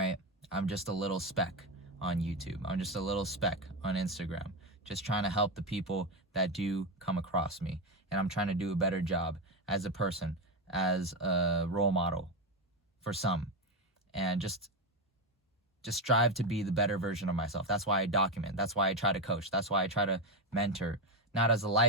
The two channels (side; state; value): both; normal; correlation 0.10